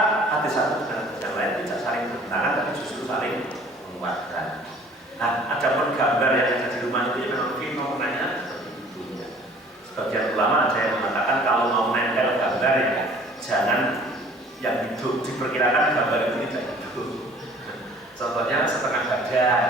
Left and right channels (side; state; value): both; normal; correlation 0.51